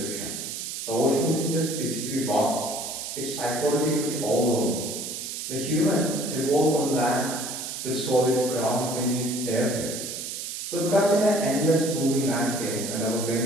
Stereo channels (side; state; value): right; noise; hiss, 6 dB below the sound